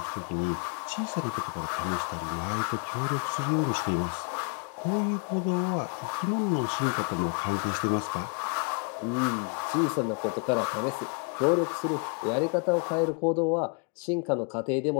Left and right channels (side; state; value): right; quieter; 38.6 dB